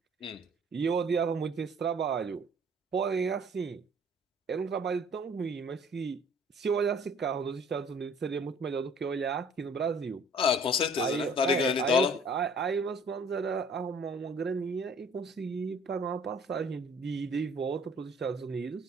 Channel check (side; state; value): both; normal; correlation 0.54